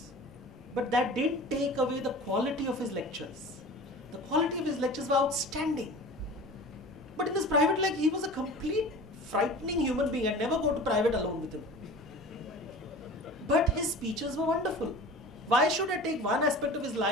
but that didn't take away the quality of his lectures. The quality of his lectures were outstanding. But in his private life, he was a complete frightening human being. I'd never go to private alone with him. But his speeches were wonderful. Why should I take one aspect of his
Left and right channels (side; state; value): both; normal; correlation 0.38